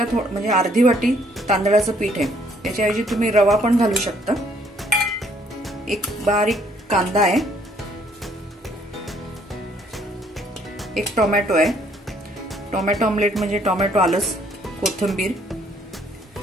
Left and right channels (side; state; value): both; normal; correlation 0.65